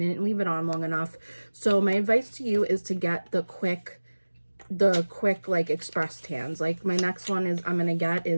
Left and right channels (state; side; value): inverted; both; correlation -1.00